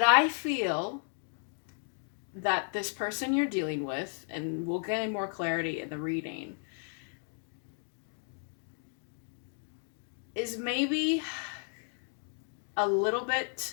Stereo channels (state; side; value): silent; right; 55 dB below the other